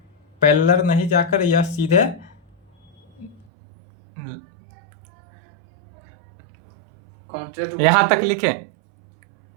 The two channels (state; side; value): drops out; left; at 3.5 s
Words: पैरेलल नहीं जाकर यह सीधे यहां तक लिखे।